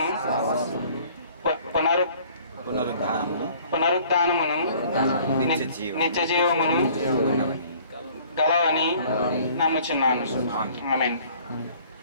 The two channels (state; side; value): inverted; both; correlation -0.54